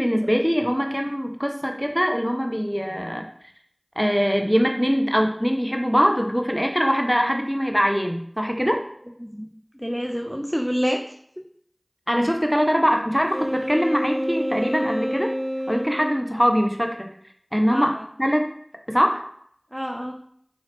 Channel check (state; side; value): identical; both; correlation 1.00